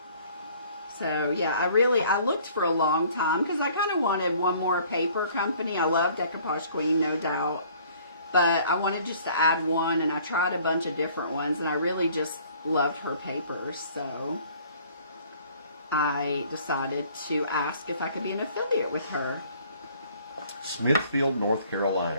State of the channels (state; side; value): inverted; both; correlation -0.56